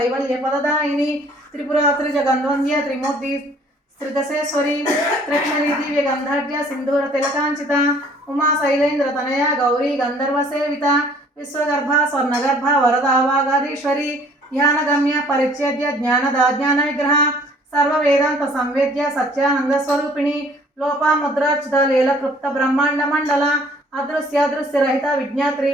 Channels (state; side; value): normal; both; correlation 0.56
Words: पददायिनी त्रिपुरात्रि जगन्वंद्य त्रिमूर्ति त्रिदशेश्वरी त्रिक्षरी दिव्य गंधर्य सिंधूर तिलकांचिता उमा शैलेन्द्र तनया गौरी गंधर्व सेविता विश्वगर्भा स्वर्णगर्भा वरदा वागाधीश्वरी ध्यानगम्य परिच्छेद्य ज्ञानदा ज्ञान विग्रह सर्व वेदांत संवेद्य सच्चानंद स्वरूपिणी लोपामुद्रार्चित लीलकृप्त ब्रह्मांड मंडल अदृश्य दृश्य रहित विज्ञात्री